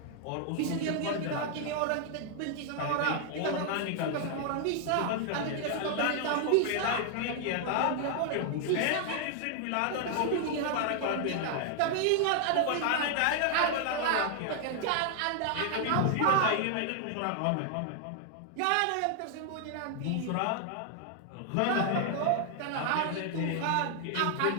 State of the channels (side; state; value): both; different; correlation 0.00